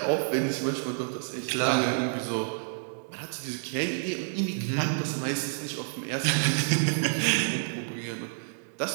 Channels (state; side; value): silent; left; digital silence